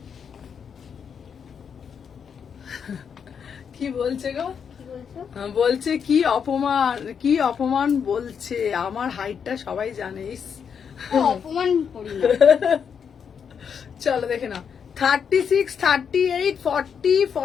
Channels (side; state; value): right; quieter; 7.1 dB